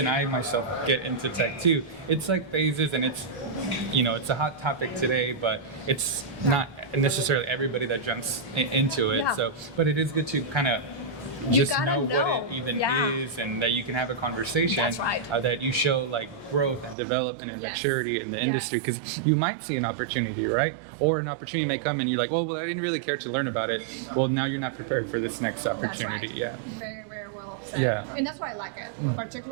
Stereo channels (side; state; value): left; drops out; at 16.9 s